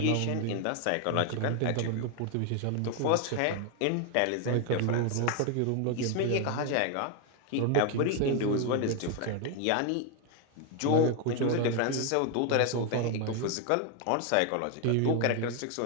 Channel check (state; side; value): different; both; correlation 0.01